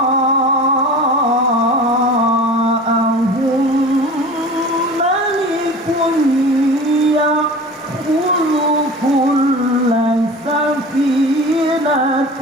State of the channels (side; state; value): both; normal; correlation 0.37